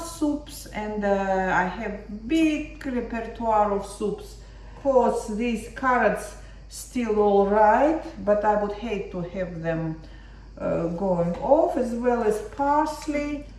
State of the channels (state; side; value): identical; both; correlation 1.00